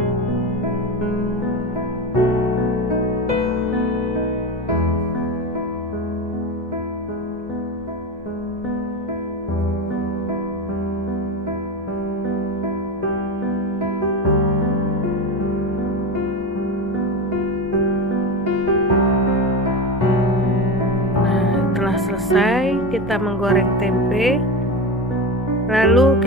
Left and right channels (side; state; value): both; normal; correlation 0.22